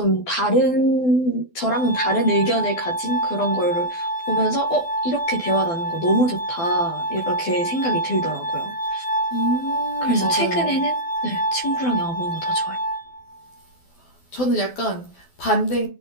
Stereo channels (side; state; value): right; late; 12 ms